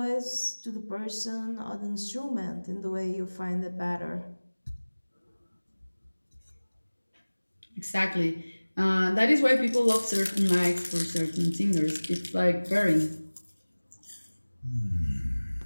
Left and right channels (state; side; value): inverted; both; correlation -1.00